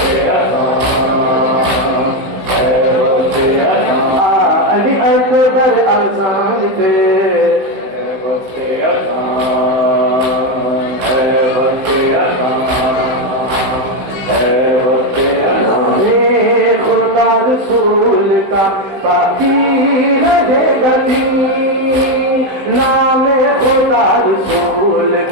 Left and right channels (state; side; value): late; left; 15 ms